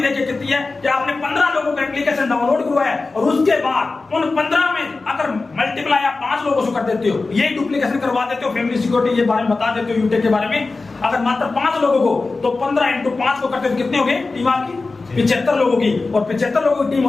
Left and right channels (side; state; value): right; quieter; 3.7 dB